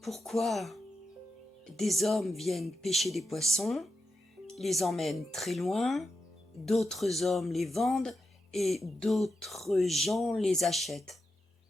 pourquoi des hommes viennent pêcher des poissons, les emmènent très loin, d'autres hommes les vendent et d'autres gens les achètent.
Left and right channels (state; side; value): normal; both; correlation 0.87